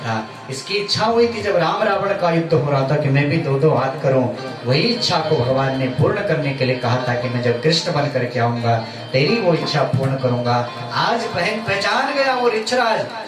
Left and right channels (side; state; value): both; identical; correlation 1.00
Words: इसकी इच्छा हुई थी जब राम रावण का युद्ध हो रहा था कि मैं भी 2-2 हाथ करूं। वही इच्छा को भगवान ने पूर्ण करने के लिए कहा था कि मैं जब कृष्ण बन करके आऊंगा तेरी वो इच्छा पूर्ण करूंगा। आज पहचान गया वो ऋक्षराज,